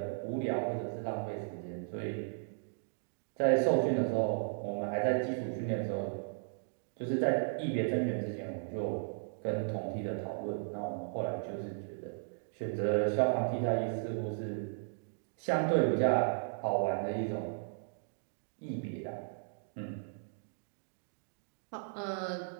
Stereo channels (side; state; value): left; silent; digital silence